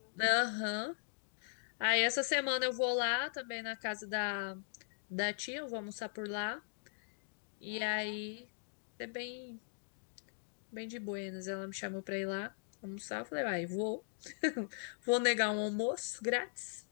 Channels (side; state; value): right; silent; digital silence